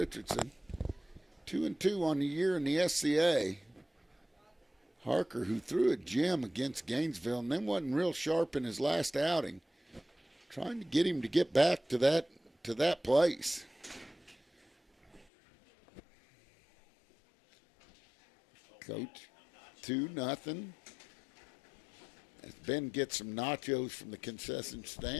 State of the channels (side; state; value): right; drops out; at 15.2 s